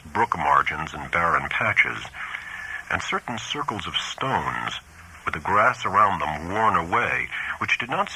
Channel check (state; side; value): identical; both; correlation 1.00